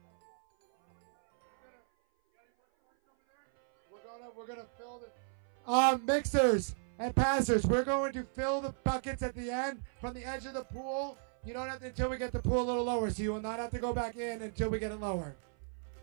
We're gonna fill the mixers and passers. We're going to fill the buckets at the end from the edge of the pool. You don't have to until we get the pool a little lower, so you will not have to go back in until we get it lower.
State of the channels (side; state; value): left; silent; 55 dB below the other